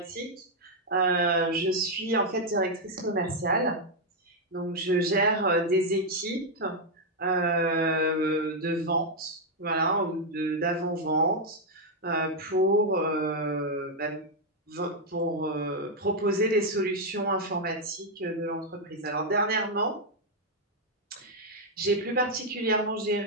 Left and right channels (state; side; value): normal; both; correlation -0.01